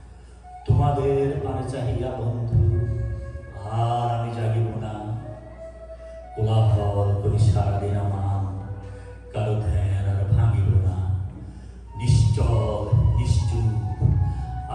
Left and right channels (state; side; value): identical; both; correlation 1.00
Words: তোমাদের পানে চাহিয়া বন্ধু আর আমি জাগিব না। কোলাহল করি সারাদিন আমার, কারো ধ্যান আর ভাঙিব না। নিশ্চল নিশ্চুপ